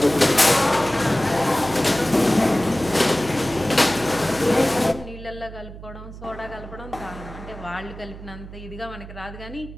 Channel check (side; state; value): right; noise; hum, 14 dB below the sound